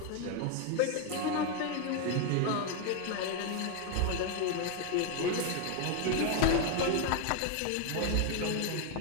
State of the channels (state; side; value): different; both; correlation 0.01